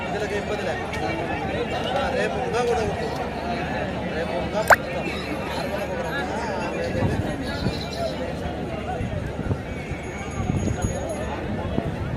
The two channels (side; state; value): both; identical; correlation 1.00